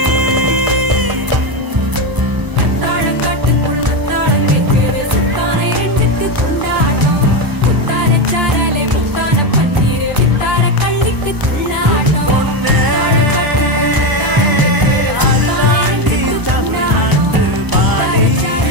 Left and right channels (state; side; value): late; left; 1.0 ms